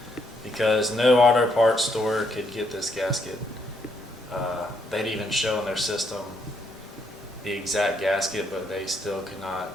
because no auto parts store could get this gasket. They'd even show in their system the exact gasket, but they still could not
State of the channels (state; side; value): normal; both; correlation 0.74